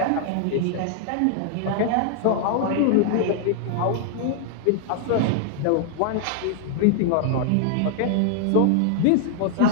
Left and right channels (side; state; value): both; different; correlation 0.00